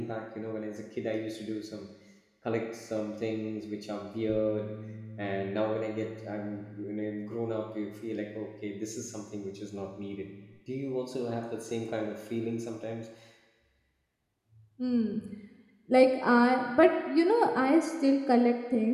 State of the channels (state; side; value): identical; both; correlation 1.00